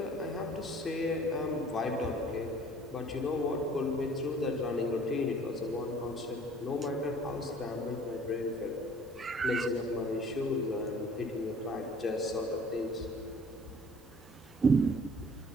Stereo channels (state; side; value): normal; both; correlation 0.52